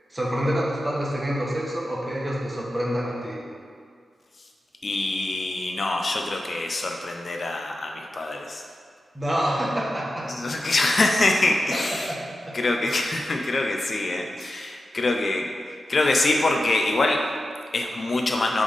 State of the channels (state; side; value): normal; both; correlation 0.92